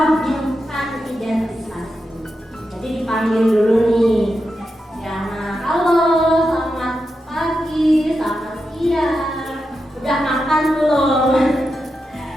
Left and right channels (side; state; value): both; normal; correlation 0.88